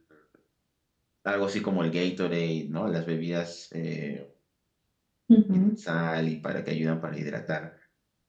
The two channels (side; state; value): both; identical; correlation 1.00